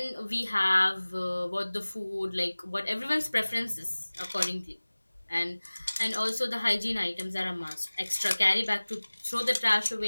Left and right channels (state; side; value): inverted; both; correlation -1.00